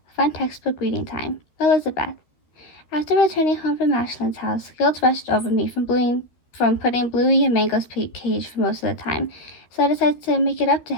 Fun textbook reading time. Elizabeth. After returning home from Ashland's house, guilt rushed over me from putting Bluey in Mango's cage for most of the time, so I decided to make it up to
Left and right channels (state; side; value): late; right; 13 ms